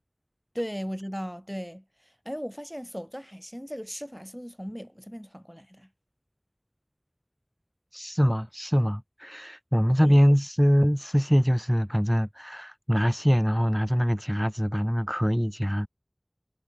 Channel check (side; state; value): both; identical; correlation 1.00